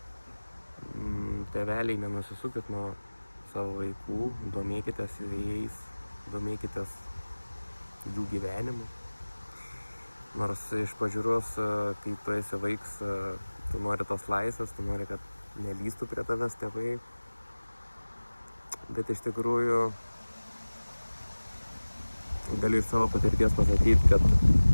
Tėveliai, nenusisukit nuo savo vaikų, domėkitės jais, domėkitės jų gyvenimu. Nors iš pažiūros, kai tu esi vaiks, tu nori tos laisvės, tu nori, kad nelystų prie tavęs tėvai. Bet iš tikrųjų galiu iš savo patirties pasakyti, kad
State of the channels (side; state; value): both; inverted; correlation -1.00